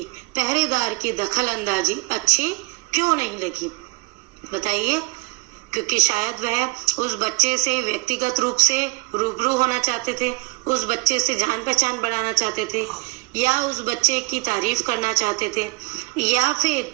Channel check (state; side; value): quieter; left; 27.1 dB